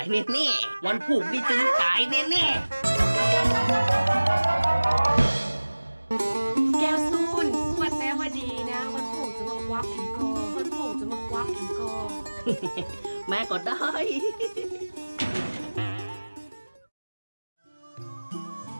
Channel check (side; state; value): both; inverted; correlation -1.00